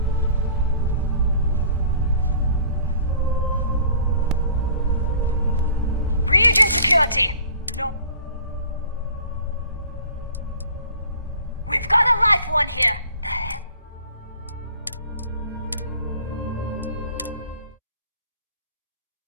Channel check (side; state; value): both; inverted; correlation -0.49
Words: Region security. No. We've got a live one here. The hell?